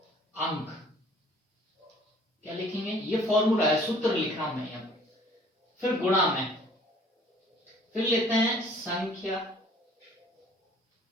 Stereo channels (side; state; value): both; normal; correlation 0.54